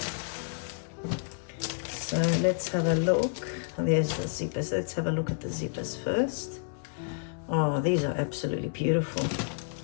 So let's have a look. There's the zippers. Let's have a look at the zippers first. Oh, these are absolutely beautiful.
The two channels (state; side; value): silent; right; digital silence